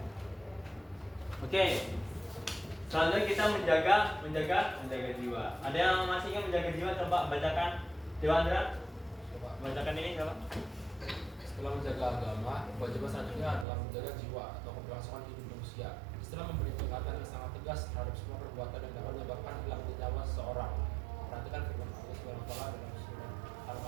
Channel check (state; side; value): drops out; left; at 13.7 s